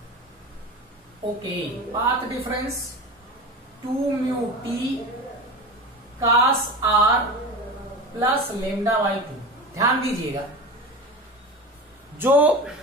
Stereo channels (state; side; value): normal; both; correlation 0.29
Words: okay, path difference 2 mu t cos r plus lambda by 2। ध्यान दीजिएगा, जो